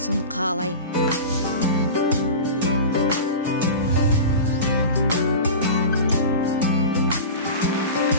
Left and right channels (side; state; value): both; inverted; correlation -0.30